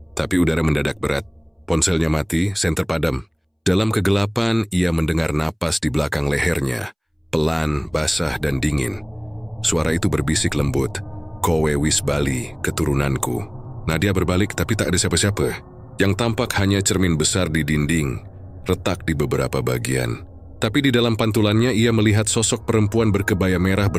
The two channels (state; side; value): identical; both; correlation 1.00